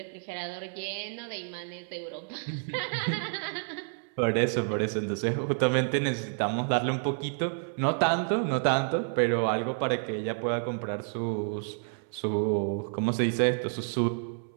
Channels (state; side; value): silent; left; 58 dB below the other